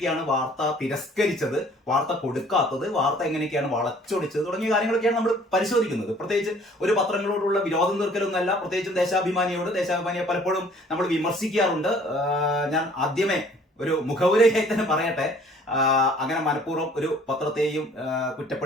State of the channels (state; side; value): normal; both; correlation 0.55